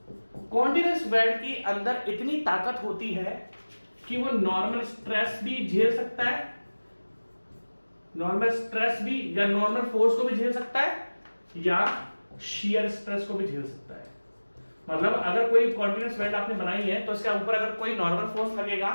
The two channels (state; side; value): inverted; both; correlation -1.00